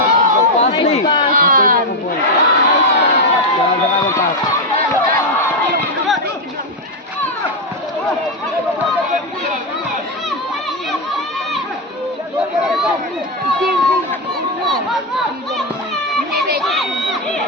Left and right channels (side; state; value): both; normal; correlation 0.05